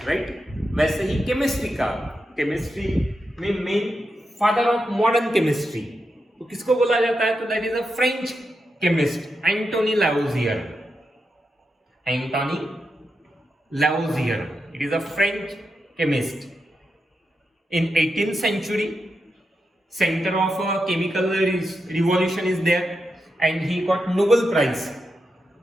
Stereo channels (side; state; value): both; normal; correlation 0.87